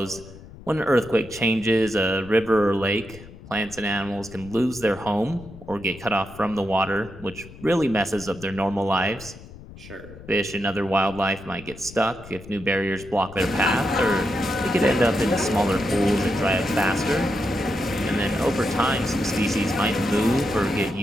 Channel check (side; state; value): left; noise; rumble, 17 dB below the sound